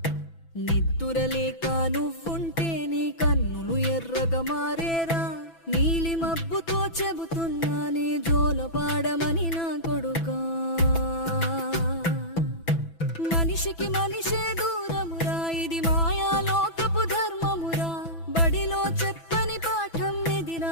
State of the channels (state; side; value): late; right; 6.0 ms